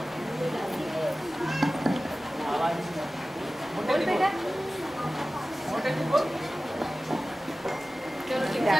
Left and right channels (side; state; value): both; normal; correlation 0.96